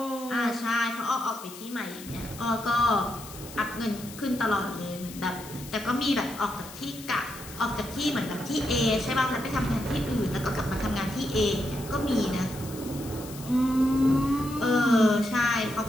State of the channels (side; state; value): left; noise; hiss, 15 dB below the sound